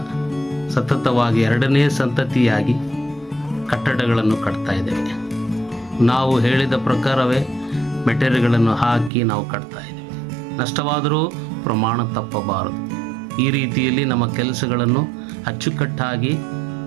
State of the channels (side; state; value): left; drops out; at 9.1 s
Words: ಸತತವಾಗಿ 2ನೇ ಸಂತತಿಯಾಗಿ ಕಟ್ಟಡಗಳನ್ನು ಕಟ್ತಾ ಇದ್ದೇವೆ. ನಾವು ಹೇಳಿದ ಪ್ರಕಾರವೇ ಮೆಟೀರಿಯಲ್ಗಳನ್ನು ಹಾಕಿ ನಾವು ಕಟ್ತಾ ಇದ್ದೇವೆ. ನಷ್ಟವಾದರೂ ಪ್ರಮಾಣ ತಪ್ಪಬಾರದು. ಈ ರೀತಿಯಲ್ಲಿ ನಮ್ಮ ಕೆಲಸಗಳನ್ನು ಅಚ್ಚುಕಟ್ಟಾಗಿ